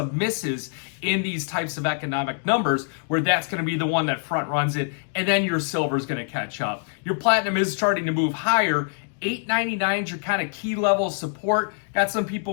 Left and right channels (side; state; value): right; silent; 56 dB below the other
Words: misses in these types of economic numbers where that's going to be the one that front runs it, and then your silver is going to catch up. Your platinum is starting to move higher. 899 is your kind of key level of support. Got some